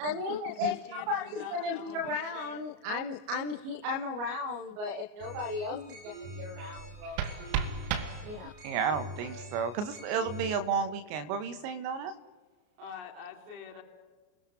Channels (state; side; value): late; left; 33 ms